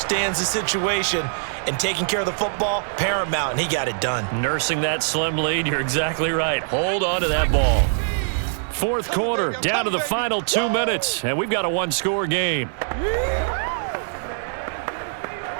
the situation, and taking care of the football, paramount, and he got it done. Nursing that slim lead, you're exactly right. Hold on to that ball. 4th quarter, down to the final 2 minutes, and we've got a one-score game.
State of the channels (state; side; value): silent; left; digital silence